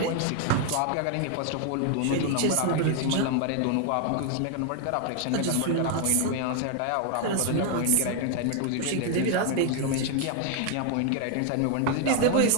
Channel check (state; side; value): different; both; correlation 0.00